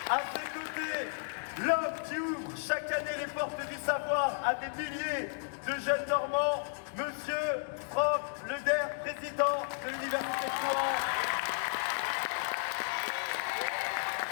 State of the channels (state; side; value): silent; right; digital silence